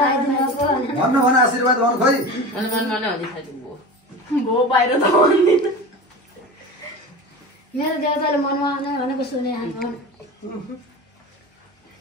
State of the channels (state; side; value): normal; both; correlation 0.30